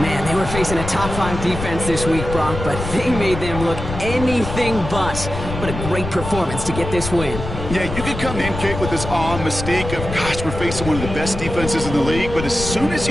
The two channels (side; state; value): left; noise; rumble, 7 dB below the sound